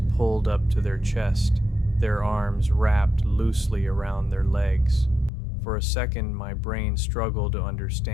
pulled up to their chest, their arms wrapped loosely around their legs. For a second, my brain struggled to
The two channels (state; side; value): drops out; right; at 5.3 s